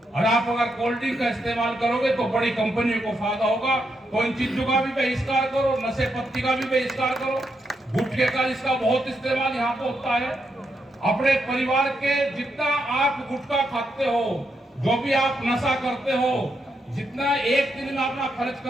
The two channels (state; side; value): normal; both; correlation 0.81